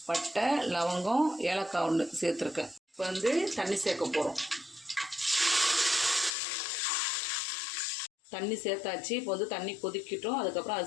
பட்டை, லவங்கம், ஏலக்காய் 1 சேர்த்துருக்கேன். இப்போ வந்து தண்ணி சேர்க்க போகிறோம். தண்ணி சேர்த்தாச்சு. இப்போ வந்து தண்ணி கொதிக்கிட்டோம். அதுக்கப்புறம்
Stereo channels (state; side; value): drops out; right; at 6.3 s